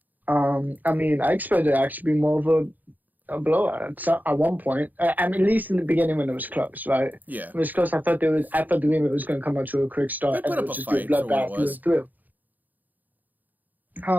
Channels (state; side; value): late; left; 0.084 ms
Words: I mean, I expected it to actually be more of a blowout at one point. I mean, at least in the beginning when it was close, right? Yeah. When it was close, I thought the game was going to come out to a quick start and it would just be a bloodbath through.